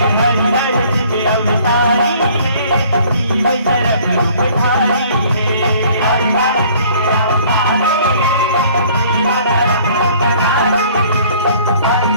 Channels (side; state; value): both; inverted; correlation -0.55